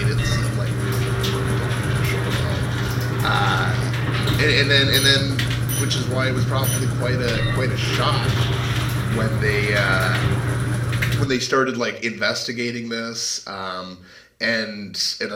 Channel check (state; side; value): identical; both; correlation 1.00